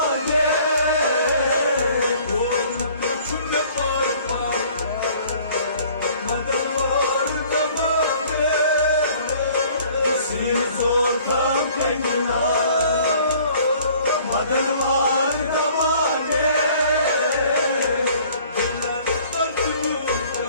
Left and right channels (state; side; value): inverted; both; correlation -0.54